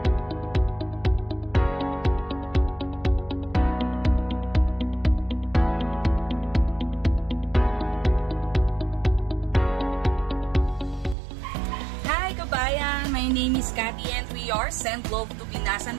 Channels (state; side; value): drops out; left; at 11.2 s